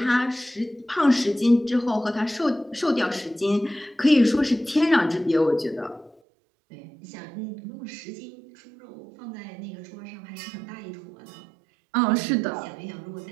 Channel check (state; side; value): drops out; left; at 6.2 s